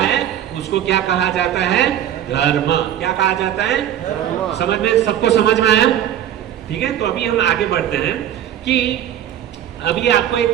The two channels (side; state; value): left; quieter; 10.9 dB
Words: उसको क्या कहा जाता है? धर्म। क्या कहा जाता है? धर्म। समझ में, सबको समझ में आया? ठीक है, तो अभी हम आगे बढ़ते हैं कि अभी आपको